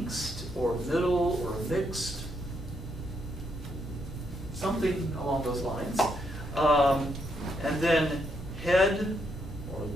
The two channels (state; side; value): normal; both; correlation 0.77